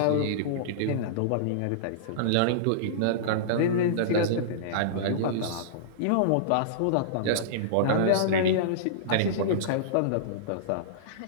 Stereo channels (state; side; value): different; both; correlation -0.03